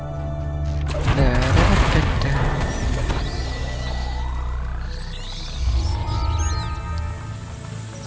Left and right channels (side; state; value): both; identical; correlation 1.00